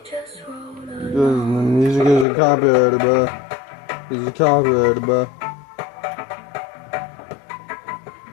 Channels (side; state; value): right; drops out; at 2.2 s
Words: the music isn't copyrighted, bro. It's copyrighted, bro.